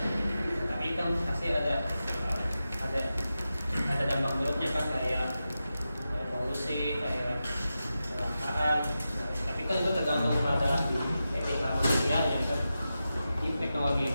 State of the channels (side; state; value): both; inverted; correlation -0.91